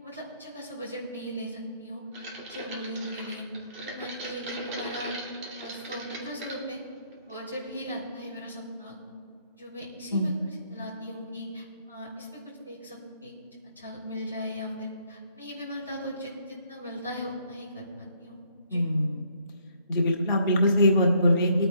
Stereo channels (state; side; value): inverted; both; correlation -0.68